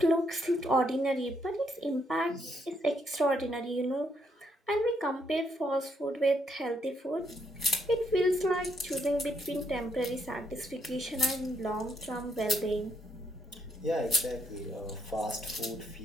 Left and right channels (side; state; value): both; normal; correlation 0.75